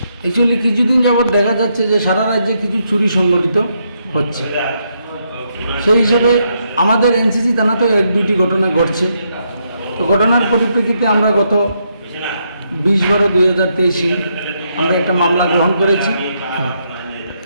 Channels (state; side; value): inverted; both; correlation -0.78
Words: অ্যাকচুয়ালি কিছুদিন যাবৎ দেখা যাচ্ছে যে সারা রাজ্যে কিছু চুরি সংগঠিত হচ্ছে, সেই হিসেবে আমাদের এনসিসি থানাতেও 1-2টি ঘটনা ঘটছে। তো ঘটনার পরিপ্রেক্ষিতে আমরা গত 20/12/2023 আমরা একটা মামলা গ্রহণ করেছি।